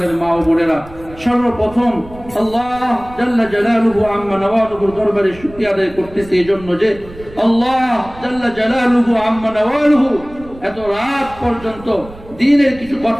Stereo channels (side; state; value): right; noise; rumble, 19 dB below the sound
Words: মা ও বোনেরা সর্বপ্রথম আল্লাহ জাল্লা জালালুহু আম্মা নওয়ালুহুর দরবারে শুকরিয়া আদায় করতেছি এজন্য যে আল্লাহ জাল্লা জালালুহু আম্মা নওয়ালুহু এত রাত পর্যন্ত দ্বীনের কিছু